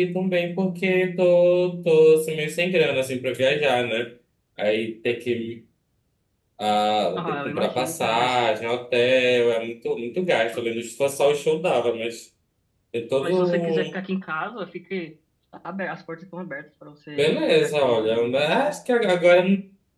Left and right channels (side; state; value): both; identical; correlation 1.00